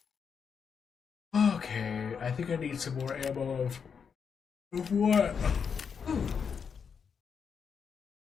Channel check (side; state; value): right; quieter; 6.5 dB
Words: Okay, I think I need some more ammo of what? Ooh.